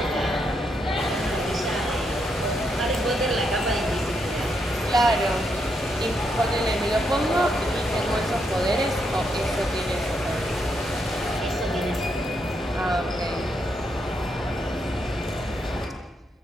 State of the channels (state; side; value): normal; both; correlation 0.79